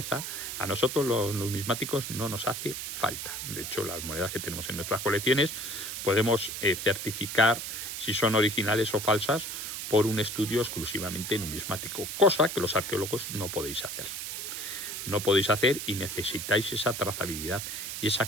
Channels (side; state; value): right; noise; hiss, 6 dB below the sound